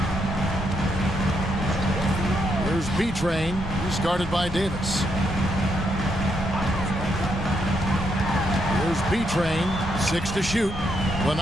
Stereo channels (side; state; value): both; normal; correlation 0.78